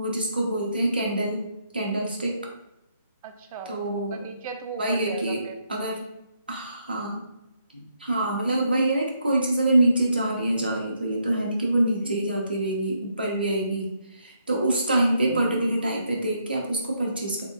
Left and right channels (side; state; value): both; inverted; correlation -0.75